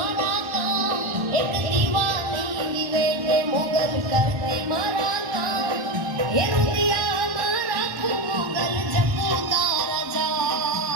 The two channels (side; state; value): left; late; 1.3 ms